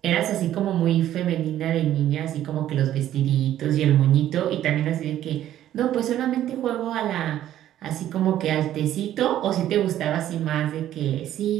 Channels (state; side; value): quieter; left; 12.2 dB